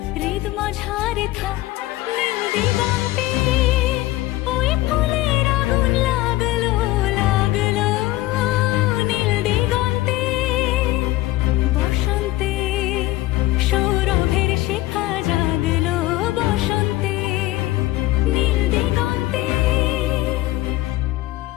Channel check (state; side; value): quieter; right; 17.5 dB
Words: হৃদ মাঝারে থাক। নীল দিগন্তে ওই ফুলের আগুন লাগলো লাগলো, নীল দিগন্তে বসন্তে সৌরভের শিখা জাগলো, বসন্তে নীল দিগন্তে।